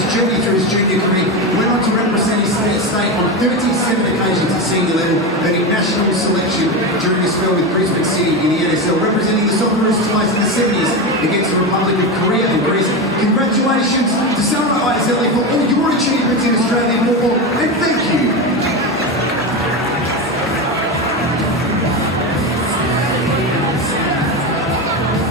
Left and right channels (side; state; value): both; normal; correlation 0.17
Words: journey through his junior career. Went on to represent his state on 37 occasions at senior level, earning national selection during his spell with Brisbane City in the NSL, representing the Socceroos twice in the 70s against the Republic of Korea and Greece. Congratulations to Socceroos for all your achievements in Australian football, and thank you.